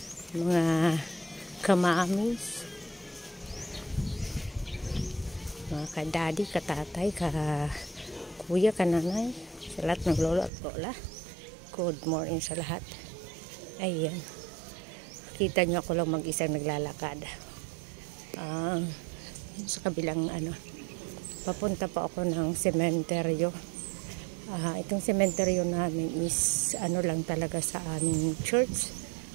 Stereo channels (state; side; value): drops out; left; at 10.5 s